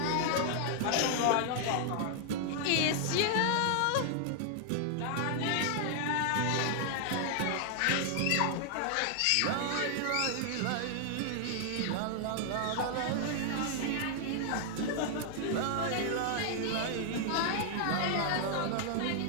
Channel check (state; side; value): different; both; correlation 0.00